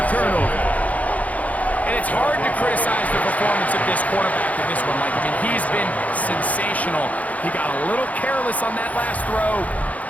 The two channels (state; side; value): late; right; 0.072 ms